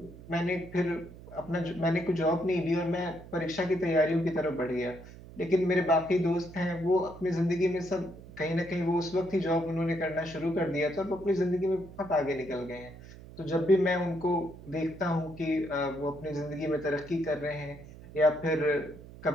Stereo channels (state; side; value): noise; right; hum, 17 dB below the sound